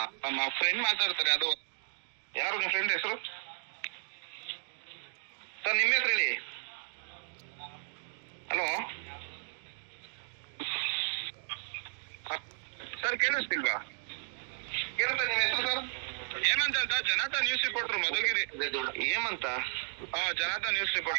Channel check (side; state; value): left; silent; digital silence